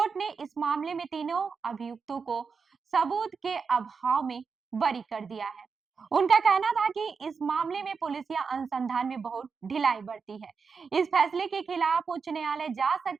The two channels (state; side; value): quieter; left; 5.4 dB